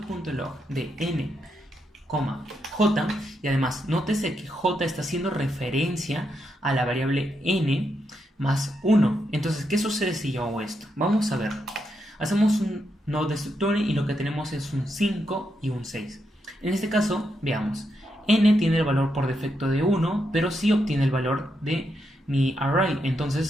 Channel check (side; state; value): both; normal; correlation 0.82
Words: de n, j, y además nótese que j está haciendo referencia a la variable n más 1. Entonces, ¿qué sucede si yo hago esto? Vamos a ver. Hacemos un node destructor y lo que tenemos es un 5 y un 6. En este caso, veamos. N tiene el valor por defecto de 1, pero sí obtiene el valor de mi array.